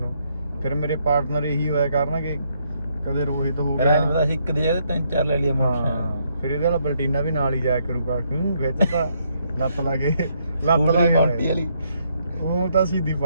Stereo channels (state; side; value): inverted; both; correlation -0.74